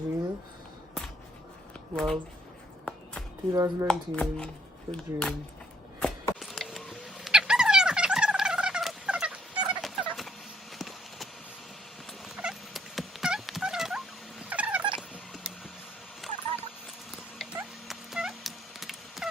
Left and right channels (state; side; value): normal; both; correlation 0.66